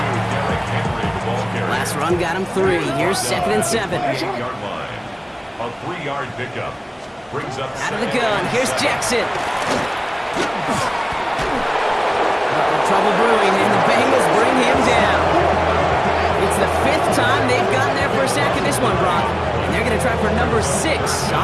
Last run got him 3. Here's 2nd and 7. 8-yard line. A 3-yard pickup. Brings up out of the gun. Here's Jackson. Trouble brewing, and the Bengals bring him down. this one, Brock. And they're going to try for number 6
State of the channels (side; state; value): both; identical; correlation 1.00